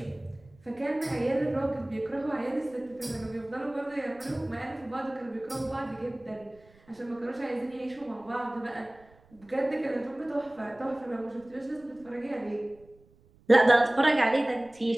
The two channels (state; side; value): noise; right; rumble, 28 dB below the sound